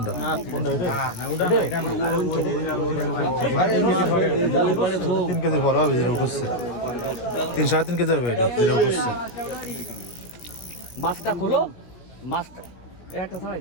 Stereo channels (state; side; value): late; right; 17 ms